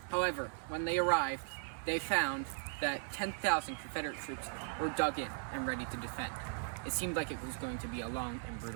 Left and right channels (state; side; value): silent; left; 52 dB below the other